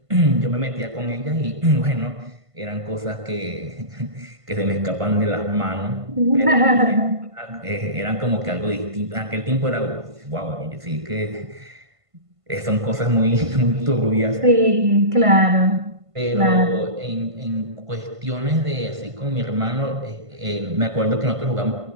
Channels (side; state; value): left; late; 1.5 ms